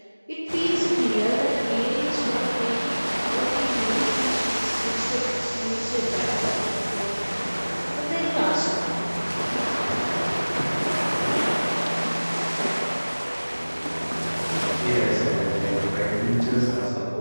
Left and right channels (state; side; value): inverted; both; correlation -1.00